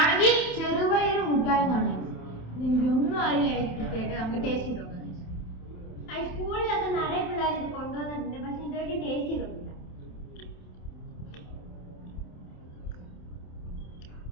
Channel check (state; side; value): late; right; 27 ms